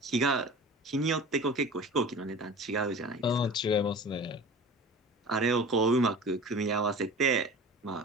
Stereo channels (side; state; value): both; normal; correlation 0.39